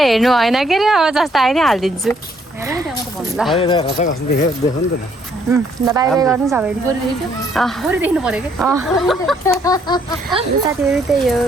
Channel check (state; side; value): normal; both; correlation 0.68